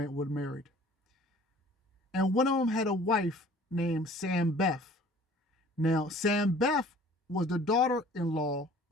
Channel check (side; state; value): both; normal; correlation 0.50